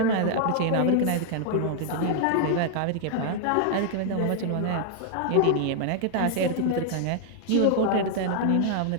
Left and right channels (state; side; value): different; both; correlation -0.01